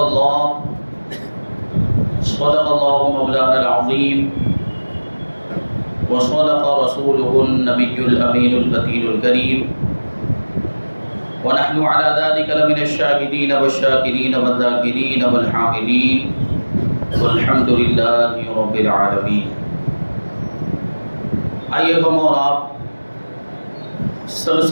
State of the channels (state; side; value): inverted; both; correlation -1.00